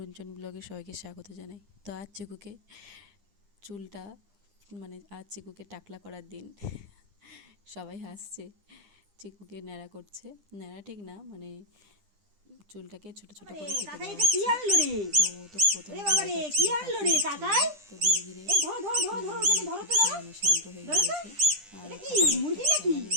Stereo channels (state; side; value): late; left; 10 ms